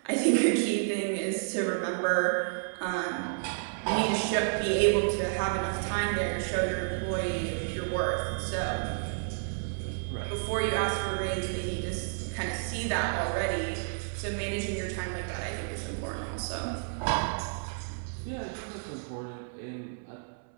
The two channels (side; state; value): left; silent; 57 dB below the other